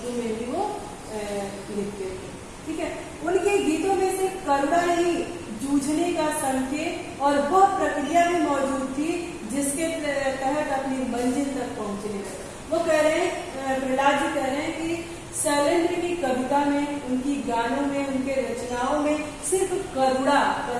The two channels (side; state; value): both; identical; correlation 1.00